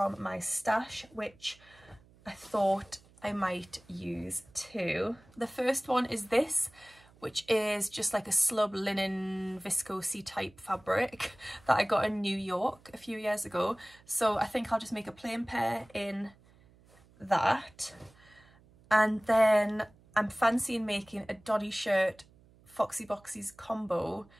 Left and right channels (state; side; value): noise; right; hum, 27 dB below the sound